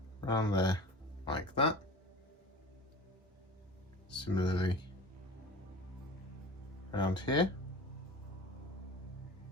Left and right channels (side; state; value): both; normal; correlation 0.37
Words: around there, like that. Similarly, around here,